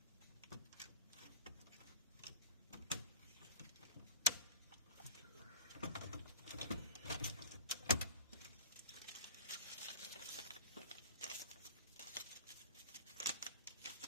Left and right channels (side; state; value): both; inverted; correlation -0.37